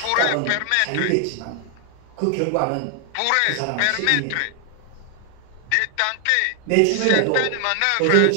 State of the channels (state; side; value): different; both; correlation 0.00